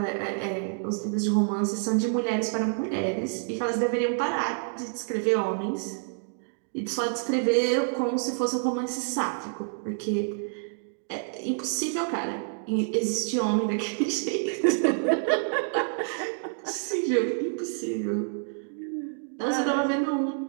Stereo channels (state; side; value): silent; left; digital silence